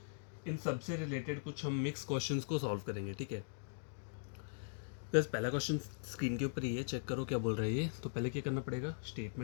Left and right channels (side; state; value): right; silent; digital silence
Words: इन सबसे रिलेटेड कुछ हम मिक्स क्वेश्चंस को सॉल्व करेंगे। ठीक है, बस पहला क्वेश्चन स्क्रीन के ऊपर ही है, चेक करो क्या बोल रहा है ये। तो पहले क्या करना पड़ेगा,